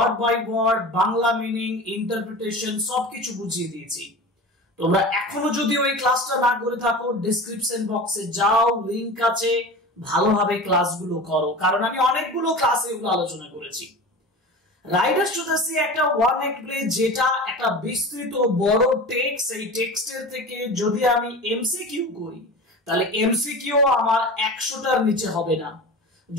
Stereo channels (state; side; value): normal; both; correlation 0.33